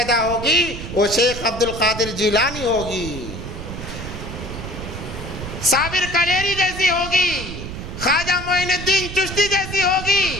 ہوگی وہ شیخ عبد القادر جیلانی ہوگی، صابر کلیری جیسی ہوگی، خواجہ معین الدین چشتی جیسی ہوگی۔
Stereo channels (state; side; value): noise; right; rumble, 9 dB below the sound